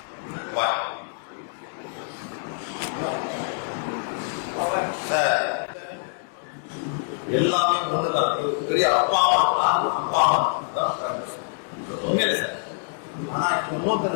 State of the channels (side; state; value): right; silent; digital silence